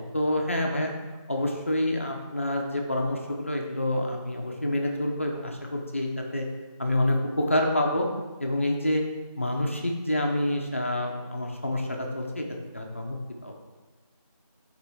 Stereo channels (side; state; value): both; inverted; correlation -0.80